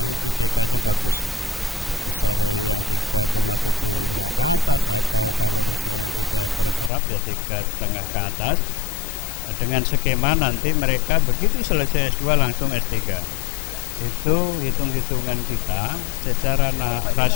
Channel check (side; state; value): right; drops out; at 6.9 s